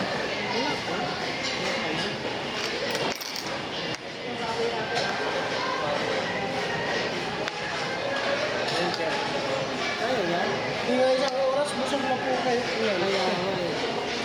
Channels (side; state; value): both; identical; correlation 1.00